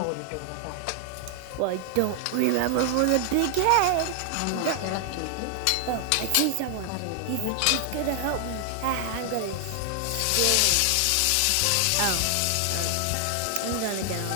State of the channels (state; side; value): different; both; correlation 0.00